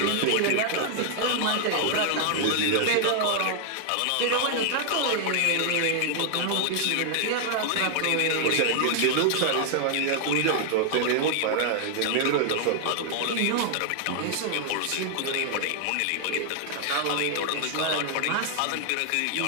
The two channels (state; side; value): different; both; correlation 0.00